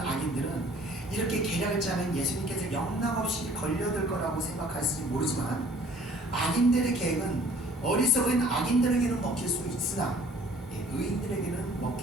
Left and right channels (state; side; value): normal; both; correlation 0.54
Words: 악인들은 이렇게 계략을 짜면 예수님께서 영락없이 걸려들 거라고 생각할지 모르지만 악인들의 계획은 어리석은 악인들에게는 먹힐 수 있으나 의인들에게는